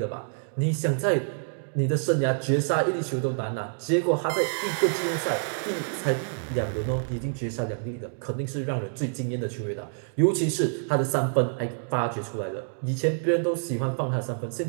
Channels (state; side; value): silent; left; digital silence